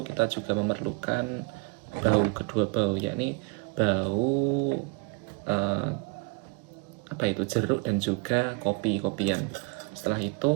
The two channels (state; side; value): quieter; left; 31.8 dB